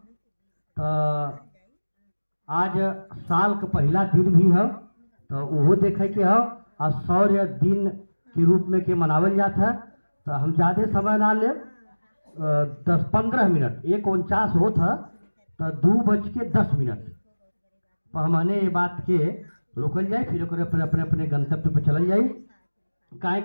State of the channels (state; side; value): inverted; both; correlation -1.00